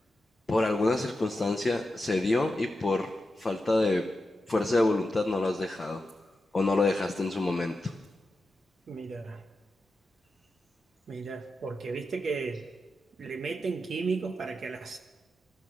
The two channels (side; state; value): both; normal; correlation 0.90